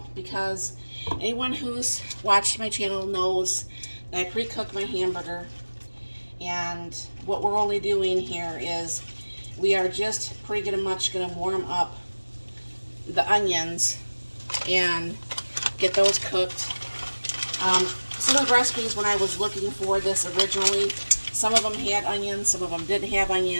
because anyone who's watched my channel knows that I pre-cook my hamburger. And what we're only doing here is we are just pretty much going to warm up the onions and get those cooked. Some of the recipes when I was looking for this originally, some of them had onions, some of them didn't have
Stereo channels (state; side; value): inverted; both; correlation -1.00